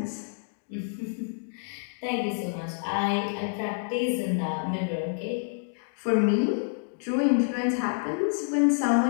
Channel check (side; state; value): right; silent; digital silence